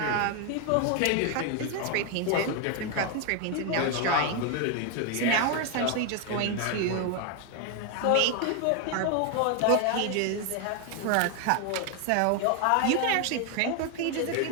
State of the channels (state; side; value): different; both; correlation 0.01